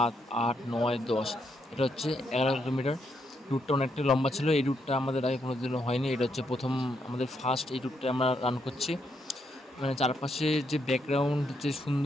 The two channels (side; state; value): both; normal; correlation 0.78